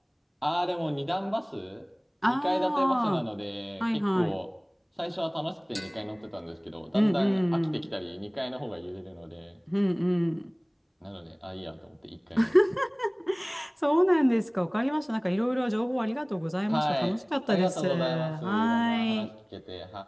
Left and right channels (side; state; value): both; identical; correlation 1.00